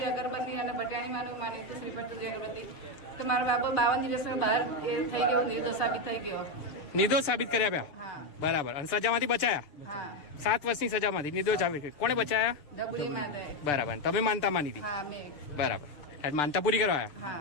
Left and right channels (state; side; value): late; right; 6.8 ms